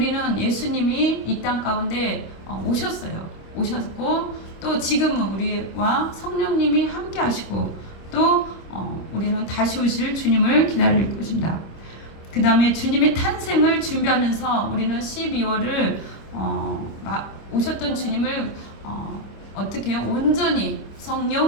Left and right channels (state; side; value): late; right; 26 ms